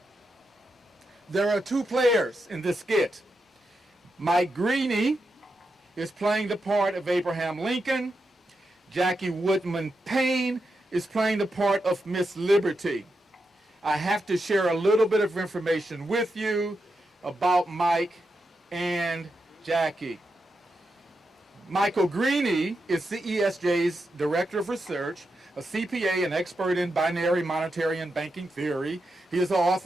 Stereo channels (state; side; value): normal; both; correlation 0.86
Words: There are two players in this skit. Mike Greene is playing the part of Abraham Lincoln. Jackie Woodman Payne is playing the part of Miss Liberty. I have to share a little bit of information with you about Mike and Jackie. Michael Greene is CESJ's Director of Research, a CPA and expert in binary monetary and banking theory. He is the